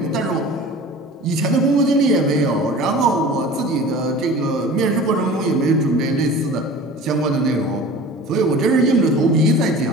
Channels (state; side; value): normal; both; correlation 0.40